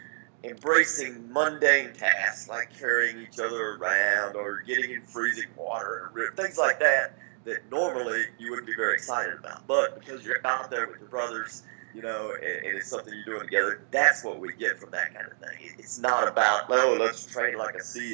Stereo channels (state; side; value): silent; left; digital silence